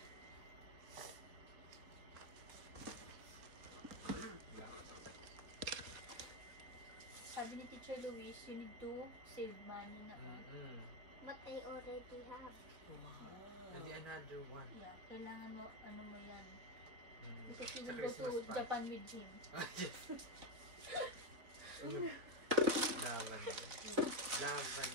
Sabi ni Teacher Luis, you need to save money na on. But I already have. Wow. And another one. Yeah, kailangan mo, ano mo yan. Because you Sa will go Christmas to pa. Japan with him. Lavender.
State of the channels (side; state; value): left; late; 4.1 ms